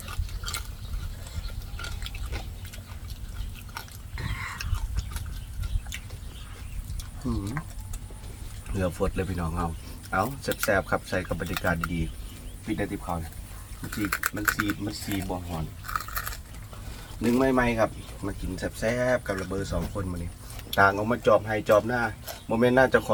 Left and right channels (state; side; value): identical; both; correlation 1.00